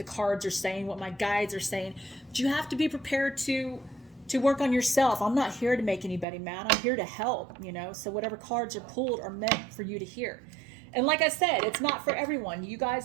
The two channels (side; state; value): left; drops out; at 6.2 s